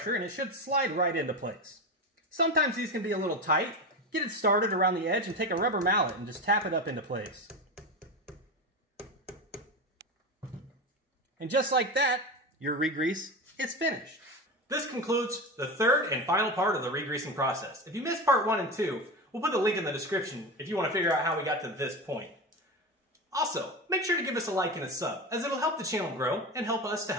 and it should slide right into place. Sometimes these can be a little tight. Get it started around the edge and take a rubber mallet and just tap it up into place. And just like that, your re-grease is finished. This concludes the third and final part of the re-greasing process. If you missed part 1 and 2, we'll put the link in the description if you want to figure out how we got to this point. Also, make sure to give us a like and a sub, as it'll help the channel grow and help us to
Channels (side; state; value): both; normal; correlation 0.22